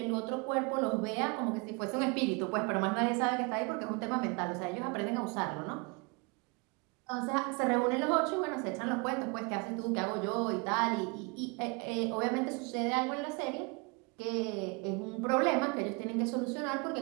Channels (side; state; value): left; quieter; 30.7 dB